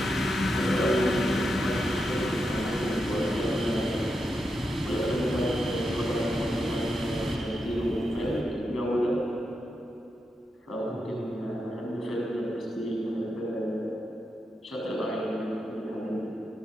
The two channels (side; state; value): both; normal; correlation 0.86